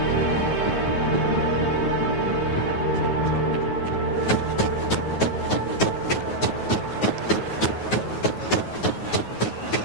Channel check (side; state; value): right; late; 9.4 ms